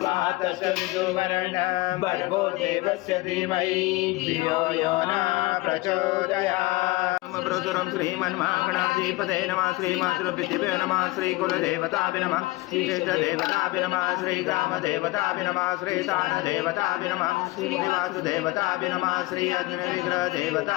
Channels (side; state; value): right; quieter; 21.0 dB